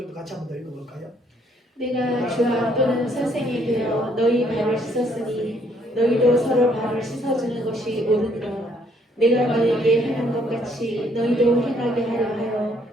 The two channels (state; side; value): normal; both; correlation 0.67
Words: 같이 한번 더 읽어볼까요? 내가 주와 또는 선생이 되어 너희 발을 씻었으니 너희도 서로 발을 씻어주는 것이 옳으니라. 내가 너희에게 행한 것 같이 너희도 행하게 하려